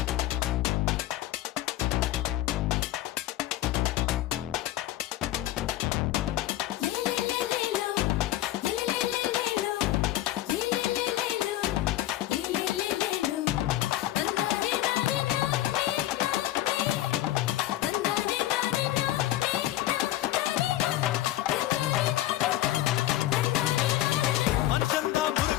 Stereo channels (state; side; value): quieter; right; 14.7 dB